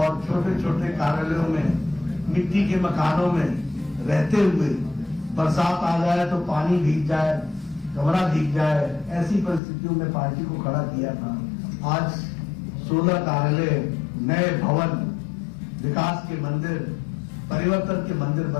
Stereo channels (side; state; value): right; drops out; at 9.6 s